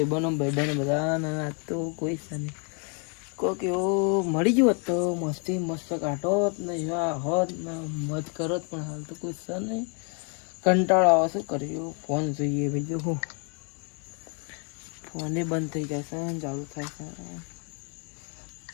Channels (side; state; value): right; quieter; 37.6 dB